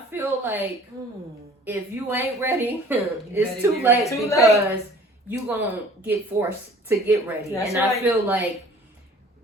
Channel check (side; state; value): both; normal; correlation 0.51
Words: feel like if you ain't ready, better it's too get late ready. because you gonna get forced to get ready. That's and right. I feel like